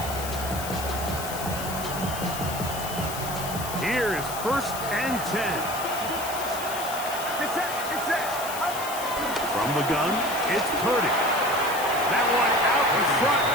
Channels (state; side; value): noise; left; hiss, 9 dB below the sound